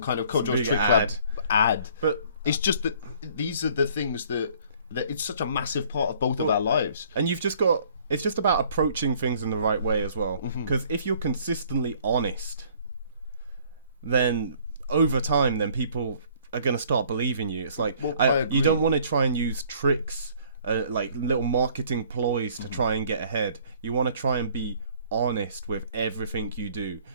kind of Kojo's Trick Lab ad. But it's just that these are the things that it's such a massive part of both of our lives. And you've just got... It's just about approaching things in the right way as well. Because if you're consistently honest, then over time, then people are going to start believing you. It's like, you don't want to try and use tricks, like little marketing ploys to try and get ahead. You want to try and be honest with everything you do.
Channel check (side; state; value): both; inverted; correlation -0.57